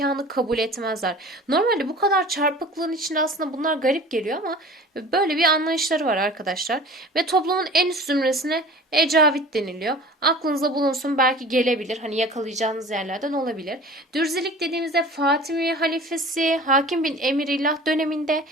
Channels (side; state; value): both; normal; correlation 0.42